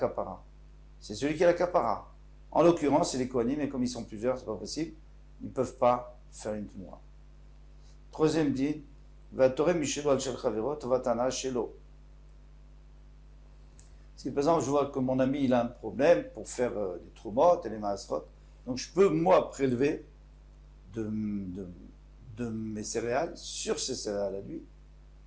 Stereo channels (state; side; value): identical; both; correlation 1.00